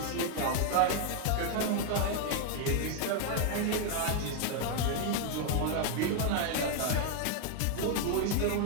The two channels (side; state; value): both; different; correlation 0.00